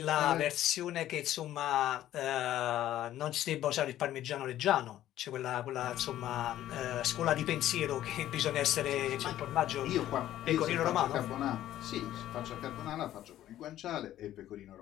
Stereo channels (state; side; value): quieter; right; 13.0 dB